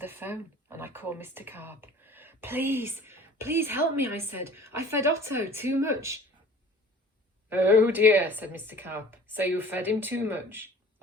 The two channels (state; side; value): normal; both; correlation 0.46